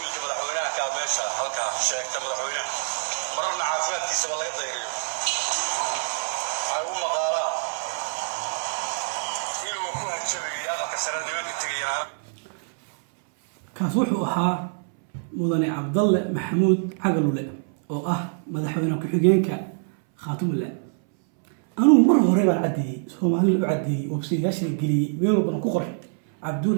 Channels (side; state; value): left; silent; 62 dB below the other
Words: madaxweynaha kaa meesha halkaa sheegta madaxweynaha mararna caafimaadkiisaba laga dayriyo. waxay u maqaalaan inuu ku hanjabayay aqalka sare nimanka tegayaan. kaas wuxuu ahaa mudane Cabdalle Maxamuud Cagalule oo ah madaxweyne ku-xigeenka Khaatumo. anigu mar hore baan caddeeyey, Soomaaliya u caddeeyey, website-yaasha geliyey, meel walbana ku qoray